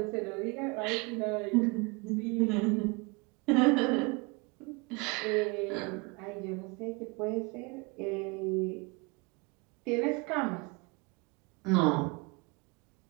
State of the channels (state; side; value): quieter; left; 28.1 dB